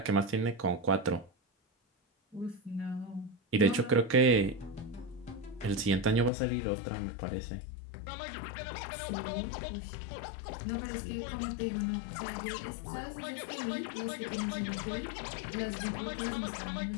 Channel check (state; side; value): drops out; right; at 6.3 s